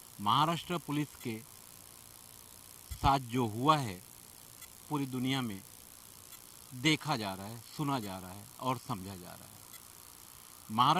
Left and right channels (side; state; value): both; identical; correlation 1.00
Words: महाराष्ट्र पुलिस के साथ जो हुआ है पूरी दुनिया में देखा जा रहा है, सुना जा रहा है और समझा जा रहा है।